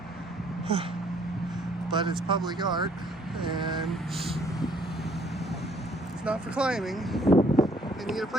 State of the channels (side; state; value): both; normal; correlation 0.63